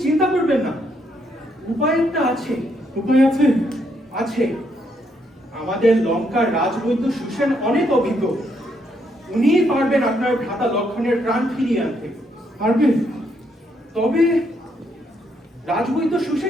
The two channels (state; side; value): normal; both; correlation 0.75